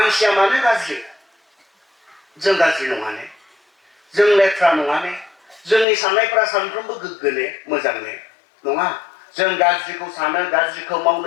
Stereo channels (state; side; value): drops out; right; at 5.9 s